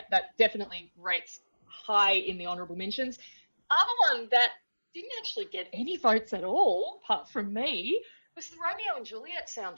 that definitely rates high in the honourable mentions. Other one that didn't actually get any votes at all, apart from me, was the Romeo and Juliet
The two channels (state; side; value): inverted; both; correlation -1.00